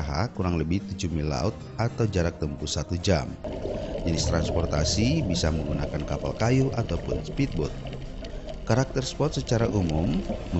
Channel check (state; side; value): identical; both; correlation 1.00